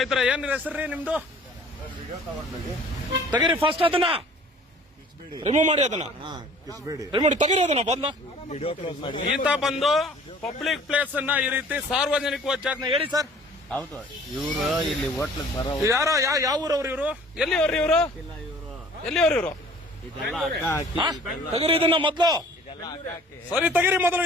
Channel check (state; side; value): normal; both; correlation 0.51